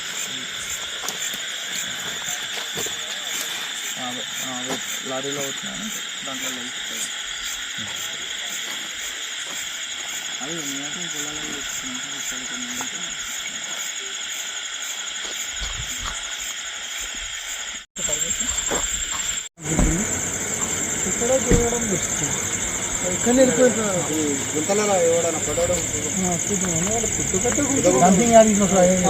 లారీలో వచ్చినాను దాంట్లో వెళ్తాయి. అది నేను పొలాలలో ఇక్కడ చూడడం బెస్ట్. ఎక్కడ వెళ్ళిపోతున్నారు గుంతలలో ఎవడన్నా పడడం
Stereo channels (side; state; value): both; identical; correlation 1.00